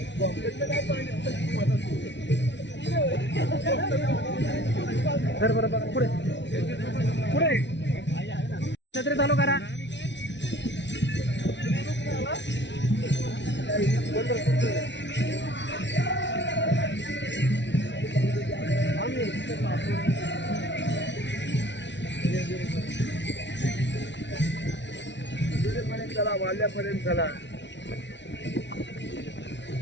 सर बरोबर पुढे पुढे छत्री चालू करा. चला वाल्यापर्यंत चला.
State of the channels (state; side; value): late; right; 0.51 ms